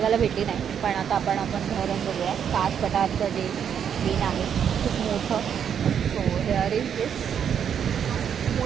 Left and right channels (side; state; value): left; quieter; 8.2 dB